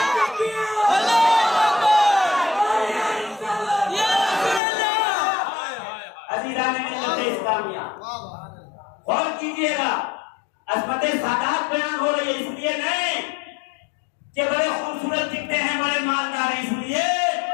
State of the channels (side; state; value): right; drops out; at 4.6 s